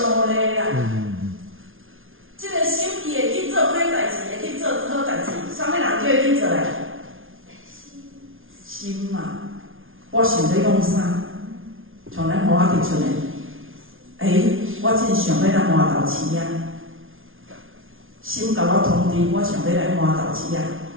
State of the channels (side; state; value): left; late; 0.59 ms